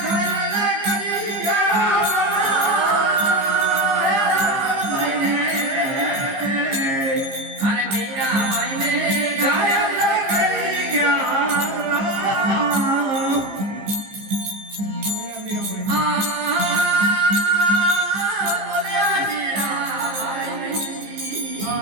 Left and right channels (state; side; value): late; left; 15 ms